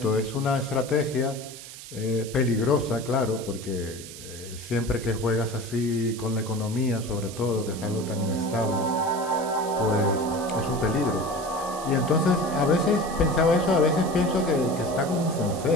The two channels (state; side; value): noise; right; hiss, 14 dB below the sound